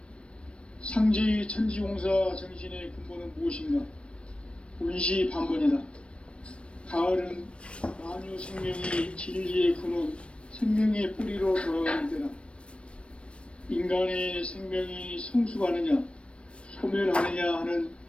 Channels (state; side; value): late; right; 0.059 ms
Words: 상제의 천지공사 정신의 근본은 무엇인가? 원시반복이다. 가을은 만유 생명이 진리의 근원, 생명의 뿌리로 돌아가는 때다. 인간의 생명이 성숙하느냐, 소멸하느냐 하는